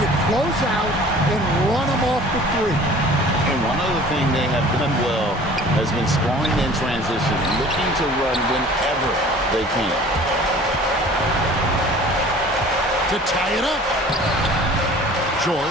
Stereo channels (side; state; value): both; normal; correlation 0.47